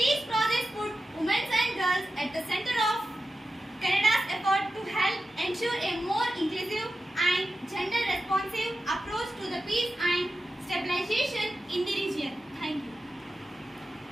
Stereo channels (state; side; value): normal; both; correlation 0.92